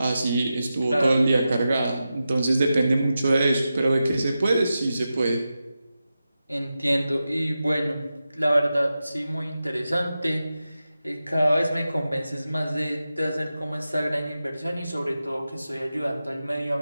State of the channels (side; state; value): both; inverted; correlation -0.92